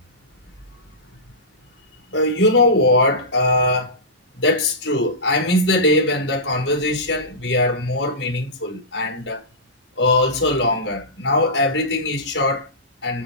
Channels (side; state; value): both; normal; correlation -0.19